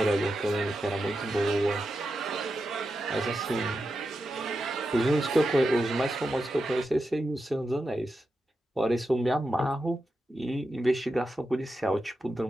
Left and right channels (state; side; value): normal; both; correlation 0.89